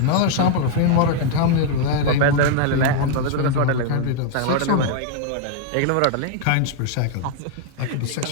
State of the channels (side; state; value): both; different; correlation 0.00